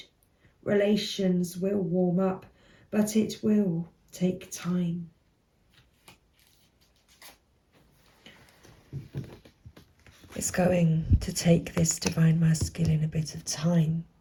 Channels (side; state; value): both; identical; correlation 1.00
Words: Relations will warm up, but it will take time. It's going to take this divine masculine a bit of time